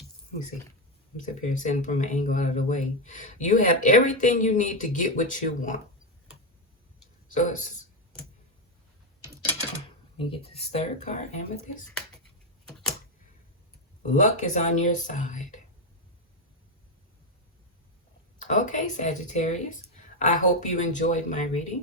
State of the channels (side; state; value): both; normal; correlation 0.07